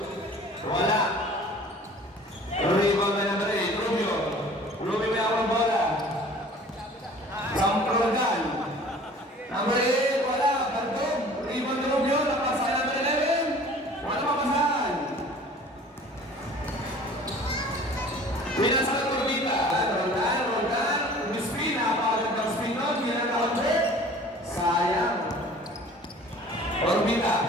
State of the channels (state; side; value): normal; both; correlation 0.47